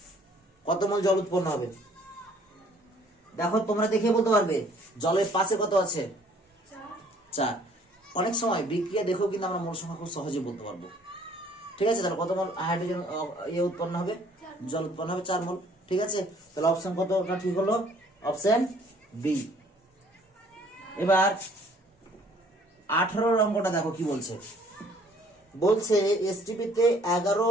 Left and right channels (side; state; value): both; normal; correlation 0.59